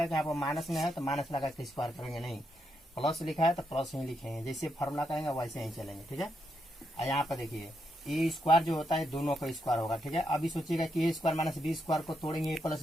कि यहाँ पर माइनस में है तो माइनस लगा के स्क्वायर करेंगे, नहीं, प्लस लिखा है तो प्लस ही लिखेंगे, जैसे फार्मूला करेंगे वैसे ही चलेंगे, ठीक है। और यहाँ पर देखिए ए स्क्वायर जो होता है दोनों का स्क्वायर होगा, ठीक है। अभी सोचिएगा कि ए स्क्वायर माइनस बी स्क्वायर को तोड़ेंगे ए प्लस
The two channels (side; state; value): both; normal; correlation 0.81